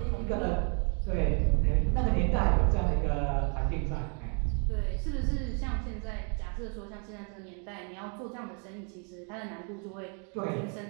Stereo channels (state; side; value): quieter; left; 39.1 dB